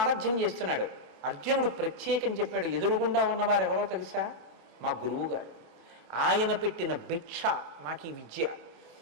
చేస్తున్నాడు. అర్జునుడు ప్రత్యేకం చెప్పాడు, ఎదురుగుండా ఉన్నవారు ఎవరో తెలుసా? మా గురువు గారు. ఆయన పెట్టిన భిక్ష నాకు ఈ విద్య.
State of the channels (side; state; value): left; late; 26 ms